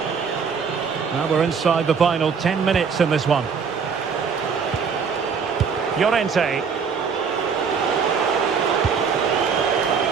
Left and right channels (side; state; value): left; quieter; 6.1 dB